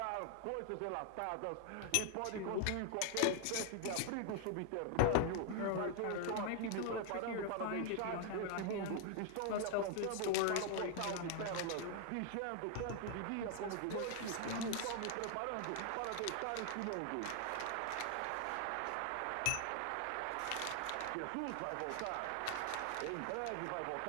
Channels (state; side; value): different; both; correlation 0.00